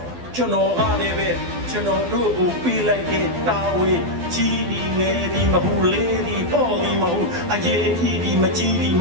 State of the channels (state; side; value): late; left; 12 ms